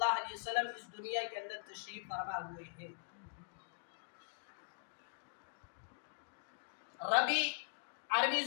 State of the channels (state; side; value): quieter; right; 32.9 dB